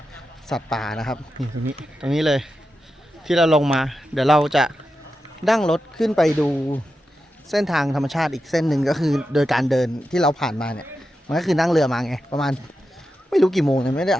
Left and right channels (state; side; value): normal; both; correlation 0.90